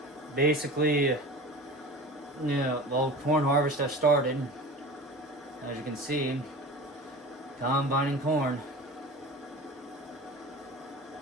Basically, yeah, well, corn harvest has started. As you can see, combining corn.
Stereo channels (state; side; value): normal; both; correlation 0.35